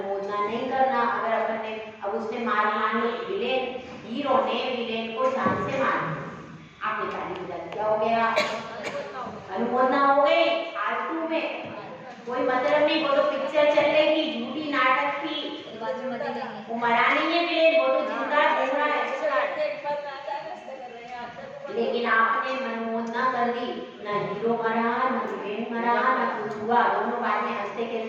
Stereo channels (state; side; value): identical; both; correlation 1.00